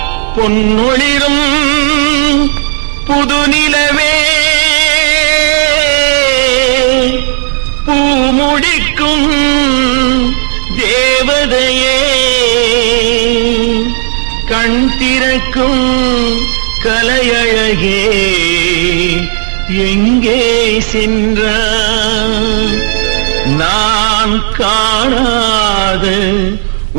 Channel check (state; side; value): silent; left; digital silence